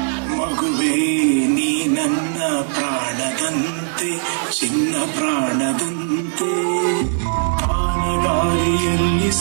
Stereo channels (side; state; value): left; silent; digital silence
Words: ಚಿನ್ನ ಪ್ರಾಣದಂತೆ ಆನಗಾಲಿಯಲ್ಲಿ